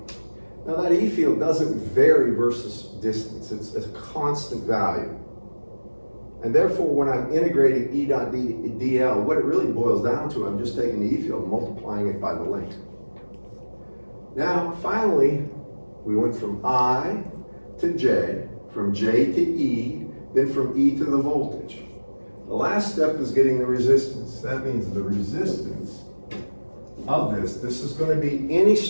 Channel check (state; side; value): inverted; both; correlation -1.00